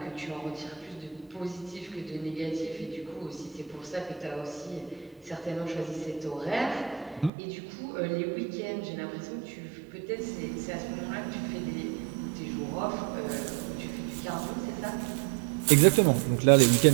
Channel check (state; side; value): drops out; left; at 7.3 s